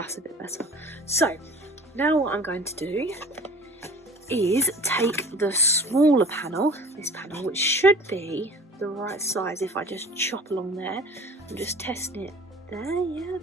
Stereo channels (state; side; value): normal; both; correlation 0.44